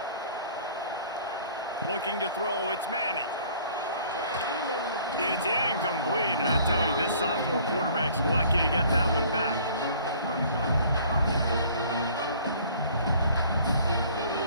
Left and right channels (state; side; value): inverted; both; correlation -0.53